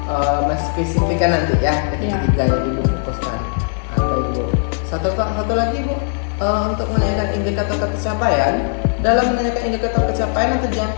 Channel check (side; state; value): right; silent; 64 dB below the other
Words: spesifikkan nanti ya ketiga-tiganya ibu fokuskan. Baik Bu, satu lagi Bu, untuk menanyakan indikator pencapaian. Dalam menanyakan indikator pencapaian atau tujuan